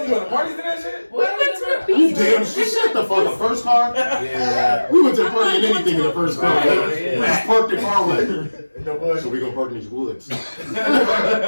want to party for that shit? We went to the You beach. damn shit the fuck. The first car? Yeah. We went to party in anything in the first car. Yeah. We just parked the car away. So we gonna park in these woods. So it's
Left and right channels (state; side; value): inverted; both; correlation -1.00